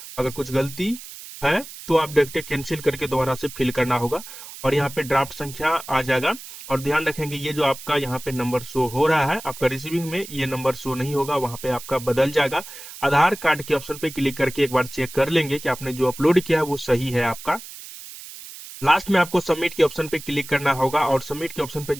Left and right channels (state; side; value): noise; right; hiss, 14 dB below the sound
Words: अगर कुछ गलती है तो आप डायरेक्ट कैंसिल करके दोबारा से फिल करना होगा और यहाँ पे ड्राफ्ट संख्या आ जाएगा। और ध्यान रखेंगे ये जो आपका यहाँ पे नंबर शो हो रहा है आपका रिसीविंग में, ये नंबर शो नहीं होगा, वहां पे आपका बदल जाएगा। आधार कार्ड के ऑप्शन पे क्लिक करके एक बार चेक कर लेंगे कि आपने जो अपलोड किया है वो सही है आपका। लास्ट में आपको सबमिट के ऑप्शन पे क्लिक करना होगा और सबमिट के ऑप्शन पे